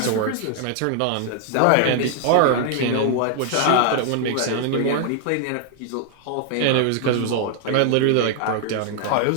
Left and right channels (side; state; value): both; different; correlation 0.00